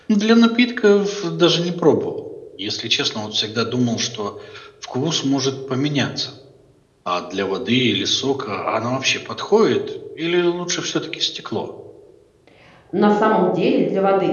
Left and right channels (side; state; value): both; identical; correlation 1.00